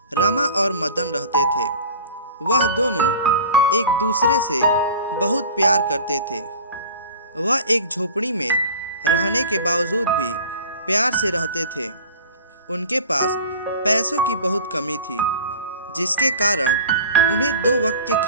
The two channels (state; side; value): inverted; both; correlation -0.40